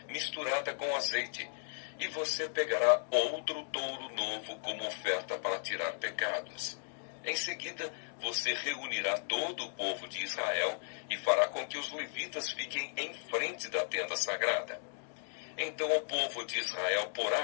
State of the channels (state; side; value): silent; right; digital silence